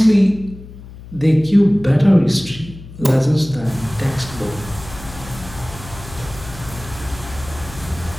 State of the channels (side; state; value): left; noise; hum, 16 dB below the sound